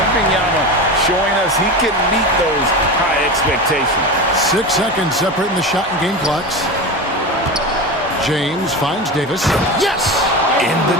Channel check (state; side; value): normal; both; correlation 0.25